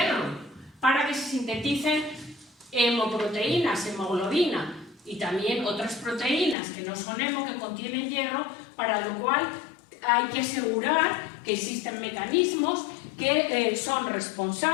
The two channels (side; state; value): right; drops out; at 6.6 s